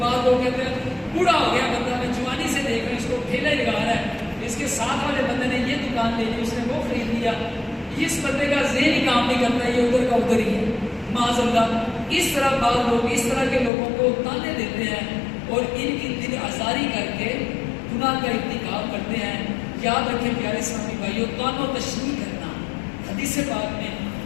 لوگ کہتے ہیں بوڑھا ہو گیا بندہ، میں جوانی سے دیکھ رہا ہوں اس کو ٹھیلا ہی لگا رہا ہے، اس کے ساتھ والے بندے نے یہ دکان لے لی، اس نے وہ خرید لیا، اس بندے کا ذہن ہی کام نہیں کرتا، یہ ادھر کا ادھر ہی ہے معاذ اللہ۔ اس طرح بعض لوگ اس طرح کے لوگوں کو تانے دیتے ہیں اور ان کی دل آزاری کر کے گناہ کا ارتکاب کرتے ہیں۔ یاد رکھیں پیارے اسلامی بھائیوں، توان و تشریح کرنا حدیث پاک میں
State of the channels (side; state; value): right; drops out; at 13.7 s